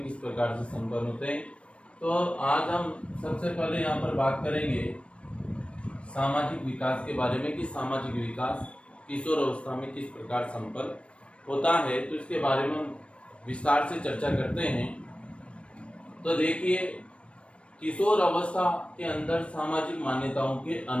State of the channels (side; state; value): right; late; 0.060 ms